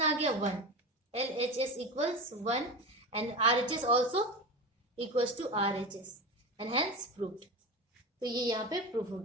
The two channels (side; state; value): both; normal; correlation 0.25